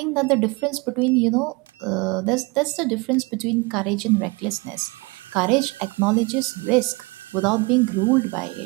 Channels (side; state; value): left; quieter; 26.6 dB